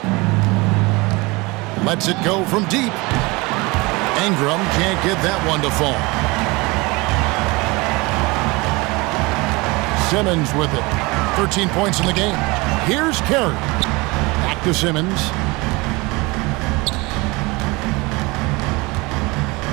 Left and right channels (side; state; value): left; quieter; 24.5 dB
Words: Lets it go from deep. Ingram can't get that one to fall. Simmons with it. 13 points in the game. Here's Carey. Back to Simmons.